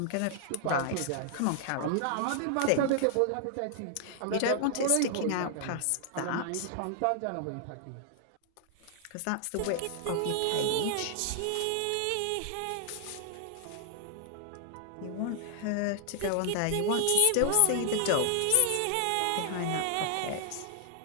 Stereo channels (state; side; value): different; both; correlation 0.00